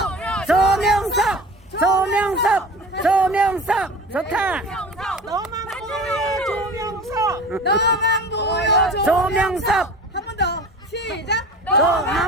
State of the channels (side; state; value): both; normal; correlation 0.37